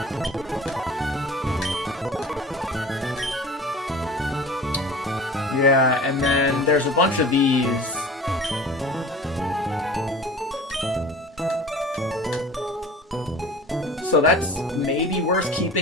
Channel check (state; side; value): normal; both; correlation 0.40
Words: Yeah, and then there's a bunch of these. So that's maybe worth